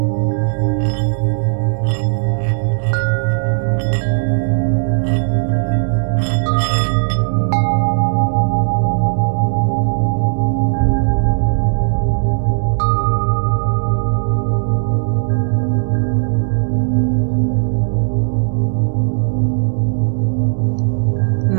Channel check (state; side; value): silent; left; 69 dB below the other